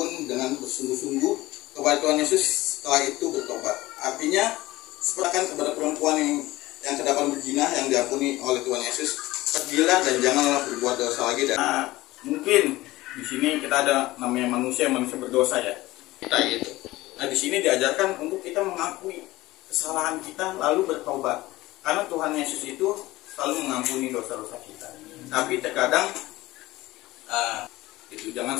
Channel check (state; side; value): quieter; right; 18.3 dB